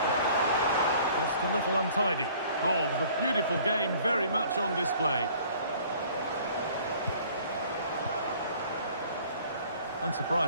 Just a little untidy. Oh, the beautiful game very much on display.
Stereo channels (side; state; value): both; inverted; correlation -0.53